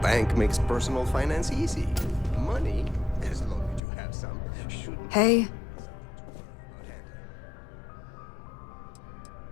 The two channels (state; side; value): drops out; right; at 3.8 s